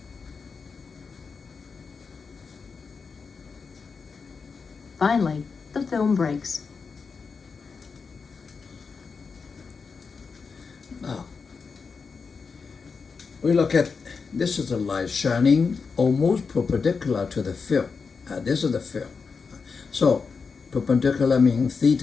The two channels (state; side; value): quieter; right; 5.1 dB